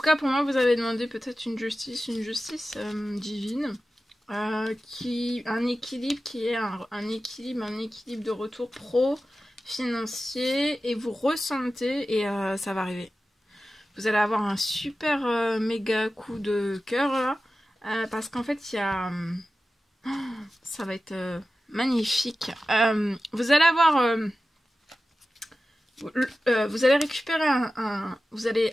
cas, pour moi, vous avez demandé peut-être une justice divine, un équilibre qui est un équilibre de retour pro-financier, et vous ressentez, et ça va arriver. Vous allez avoir un super méga coup de cœur là, parce qu'en fait, il y a... ça va être magnifique. Vous allez avoir... vous allez récupérer vous allez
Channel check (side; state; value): both; normal; correlation 0.94